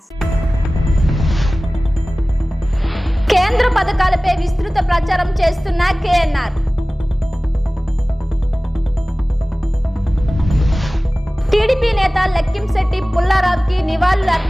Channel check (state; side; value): normal; both; correlation 0.98